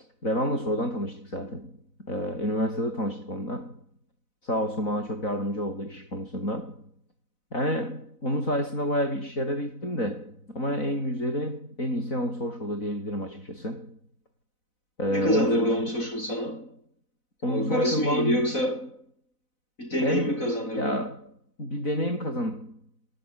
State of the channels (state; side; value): late; right; 4.0 ms